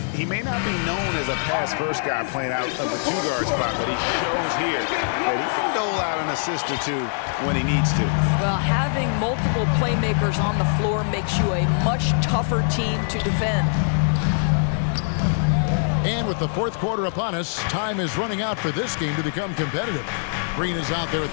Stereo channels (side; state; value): right; silent; digital silence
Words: may not be known as a pass-first guy playing out of the 2-guard spot, but he shows here that he can dole out an assist or 2 when he needs to. Well, having multiple playmakers on the floor makes you a much tougher team to defend. And with the fourth quarter upon us, time is running out for this game to become competitive. Green is out there